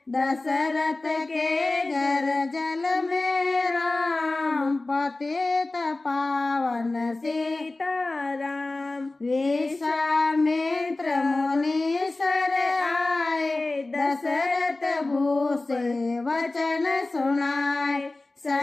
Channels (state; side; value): quieter; right; 3.1 dB